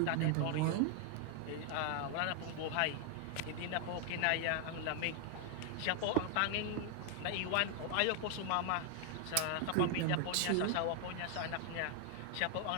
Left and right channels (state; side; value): different; both; correlation 0.00